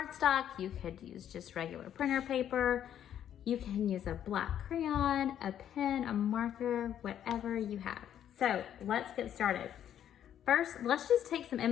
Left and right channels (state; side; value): quieter; right; 10.2 dB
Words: you could use just regular printer paper, you can use a black crayon, a pen, a marker, whatever you have. So let's get started. First, let's just take some